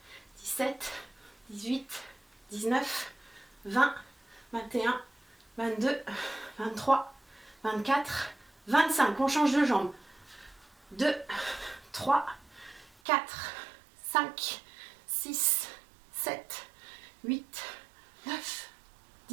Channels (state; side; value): drops out; left; at 12.9 s